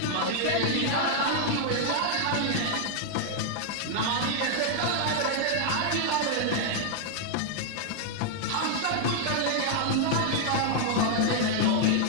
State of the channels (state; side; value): different; both; correlation -0.01